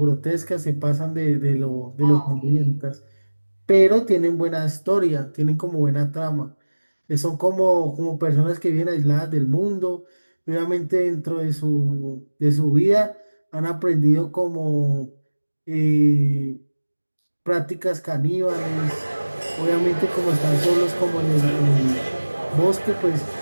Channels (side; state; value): both; inverted; correlation -1.00